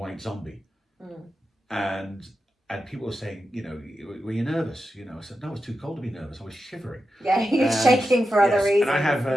Zombie, and people were saying, you know, were you nervous? You know, I said no, it was too cold to be nervous. I was shivering. Yeah, you're shaking for other reasons. And I have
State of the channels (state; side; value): normal; both; correlation 0.89